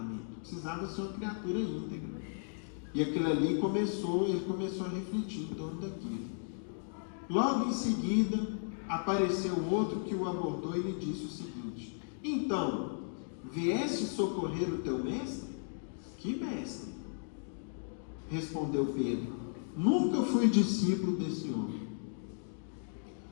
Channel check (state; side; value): silent; right; digital silence